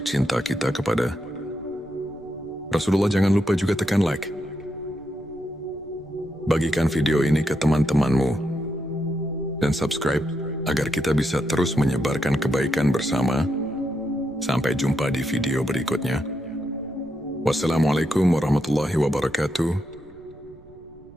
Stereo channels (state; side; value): noise; right; rumble, 24 dB below the sound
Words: cinta kita kepada Rasulullah. Jangan lupa juga tekan like. Bagikan video ini ke teman-temanmu dan subscribe agar kita bisa terus menyebarkan kebaikan bersama. Sampai jumpa di video berikutnya. Wassalamualaikum warahmatullahi wabarakatuh.